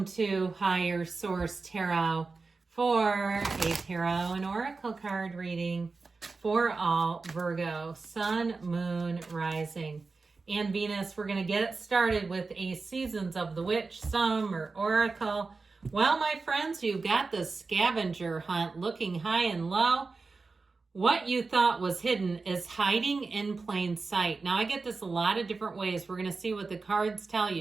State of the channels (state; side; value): quieter; left; 4.1 dB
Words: to Higher Source Tarot for a tarot and oracle card reading for all Virgo, Sun, Moon, Rising, and Venus. We're going to get it started with a Seasons of the Witch, Summer Oracle. Well, my friends, you've got the scavenger hunt looking high and low. What you thought was hidden is hiding in plain sight. Now, I get this a lot of different ways. We're going to see what the cards tell